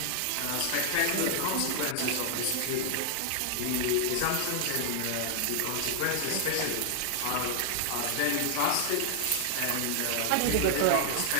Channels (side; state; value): both; different; correlation 0.00